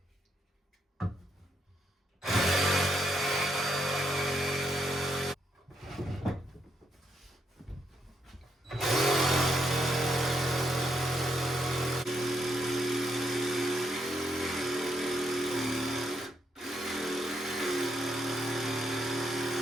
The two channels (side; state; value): both; normal; correlation 0.78